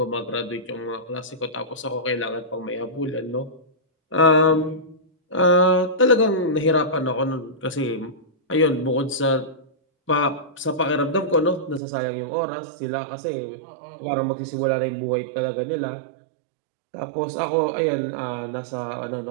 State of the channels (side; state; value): left; drops out; at 11.8 s